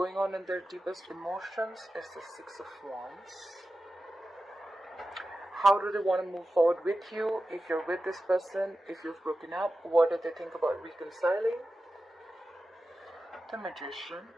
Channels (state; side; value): normal; both; correlation 0.93